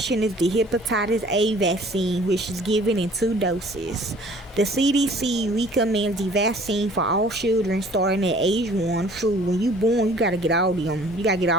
is the hepatitis A vaccine, which is given in 2 doses. The CDC recommends the vaccine for all children starting at age 1. True, when you born, you gotta get all them. You gotta get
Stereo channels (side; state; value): both; normal; correlation 0.53